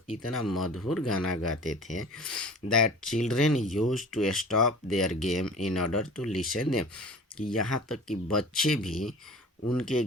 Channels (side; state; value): both; normal; correlation 0.41